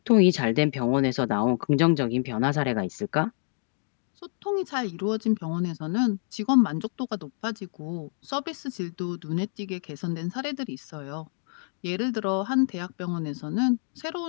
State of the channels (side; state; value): right; silent; digital silence